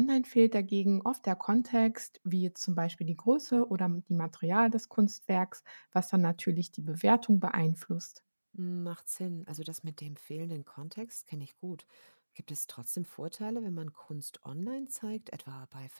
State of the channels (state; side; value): inverted; both; correlation -1.00